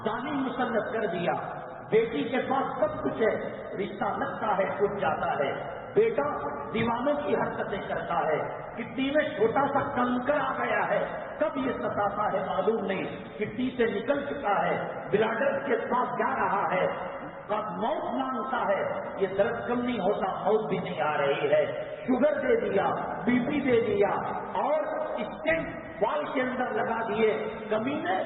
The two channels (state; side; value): identical; both; correlation 1.00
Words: ظالم مسلط کر دیا، بیٹی کے پاس سب کچھ ہے، رشتہ لگتا ہے ٹوٹ جاتا ہے، بیٹا دیوانوں کی حرکتیں کرتا ہے، کٹی میں چھوٹا سا کنکر آ گیا ہے، کب یہ ستاتا ہے معلوم نہیں، کٹی سے نکل چکا ہے، بلادر کے پاس جا رہا ہے، کب موت مانگتا ہے، یہ درد کم نہیں ہوتا، موت بھی نہیں آ رہی ہے، شوگر دے دیا، بی پی دے دیا، اور اسٹینٹ وال کے اندر لگا دیے، کمینے